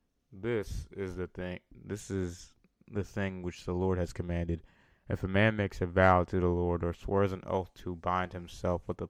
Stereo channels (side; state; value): both; identical; correlation 1.00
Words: This is the thing which the Lord has commanded. If a man makes a vow to the Lord, or swears an oath to bind himself with a